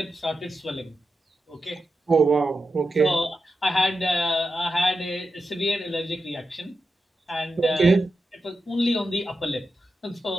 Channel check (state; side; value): normal; both; correlation 0.90